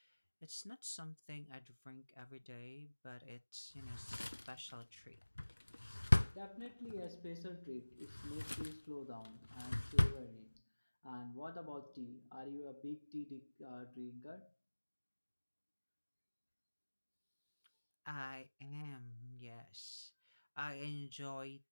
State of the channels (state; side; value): inverted; both; correlation -1.00